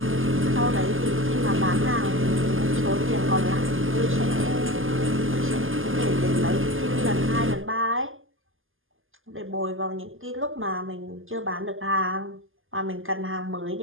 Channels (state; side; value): late; left; 0.59 ms